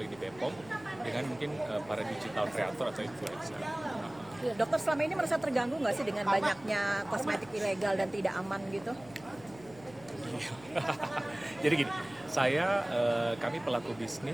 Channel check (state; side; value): noise; left; hum, 22 dB below the sound